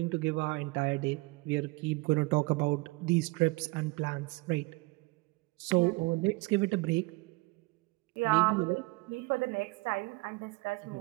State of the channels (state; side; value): quieter; left; 25.0 dB